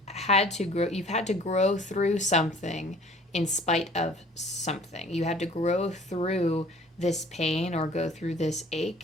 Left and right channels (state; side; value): normal; both; correlation 0.51